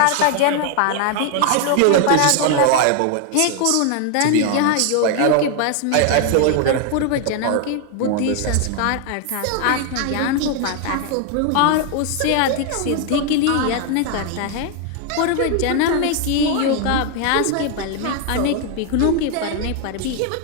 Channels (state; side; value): different; both; correlation 0.00